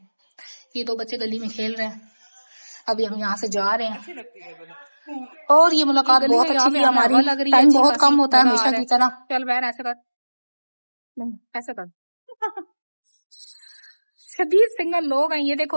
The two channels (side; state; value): both; inverted; correlation -1.00